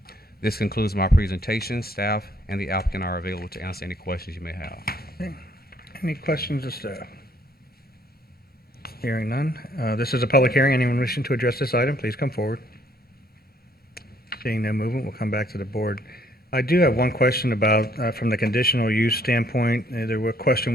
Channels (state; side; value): normal; both; correlation 0.65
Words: This concludes my presentation. Staff and the applicant are available to answer any questions you may have. Okay. Any questions of staff? Hearing none. This is a public hearing. Anyone wishing to address this item, please come forward. Seeing no movement, we'll come back to the board. I do have one question about, from the conditional use standpoint, a